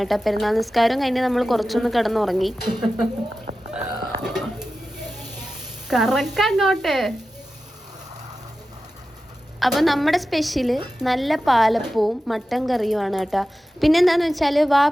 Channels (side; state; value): both; normal; correlation 0.93